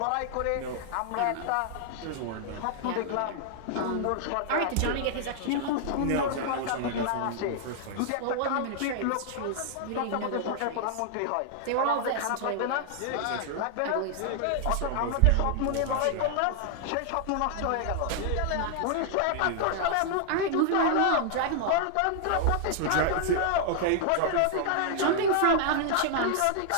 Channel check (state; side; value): different; both; correlation 0.00